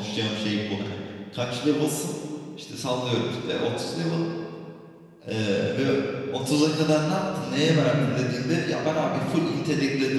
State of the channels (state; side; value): identical; both; correlation 1.00